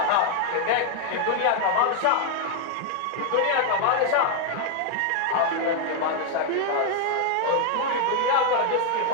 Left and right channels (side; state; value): both; different; correlation 0.00